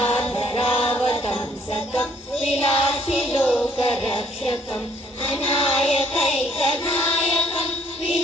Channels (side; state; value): both; normal; correlation 0.64